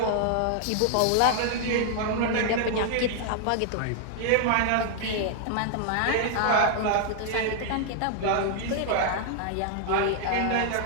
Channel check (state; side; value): different; both; correlation 0.00